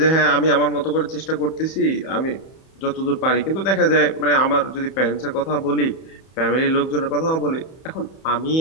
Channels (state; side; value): late; right; 31 ms